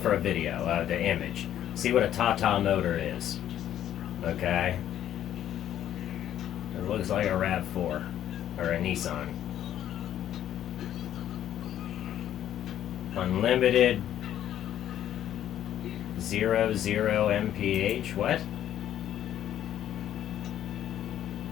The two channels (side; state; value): right; quieter; 11.2 dB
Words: a video, the image. See what a Tata motor is. Okay? It looks like a RAV4 or a Nissan. Unlimited 00 mph. What?